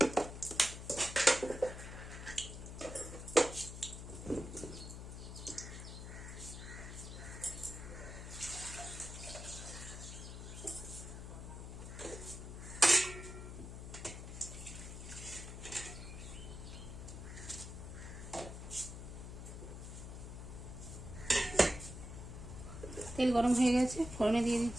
তেল গরম হয়ে গেছে, ফোড়নে দিয়ে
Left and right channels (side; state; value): left; noise; hum, 9 dB below the sound